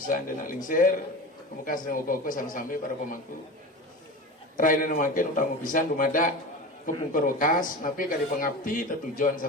anda lingsir kemuka sedang uko-uko sampai para pemangku. Raina makin utang pisan dumada kepungkur wakas napi kali pengabdi tujuan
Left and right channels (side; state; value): both; normal; correlation 0.30